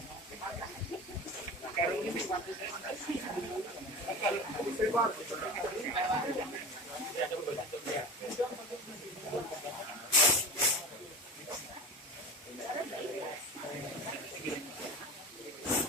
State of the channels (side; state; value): both; normal; correlation 0.30